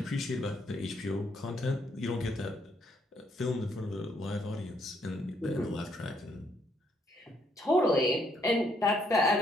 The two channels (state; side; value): normal; both; correlation 0.72